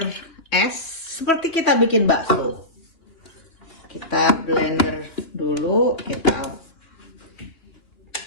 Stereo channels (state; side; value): late; right; 2.9 ms